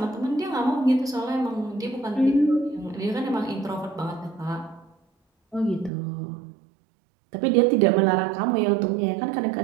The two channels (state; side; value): drops out; left; at 5.9 s